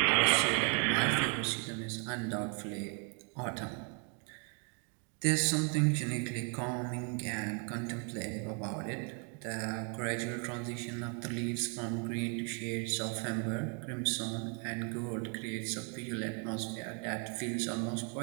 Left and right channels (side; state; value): left; quieter; 39.2 dB